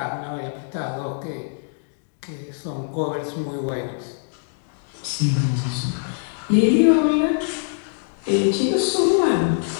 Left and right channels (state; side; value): silent; right; digital silence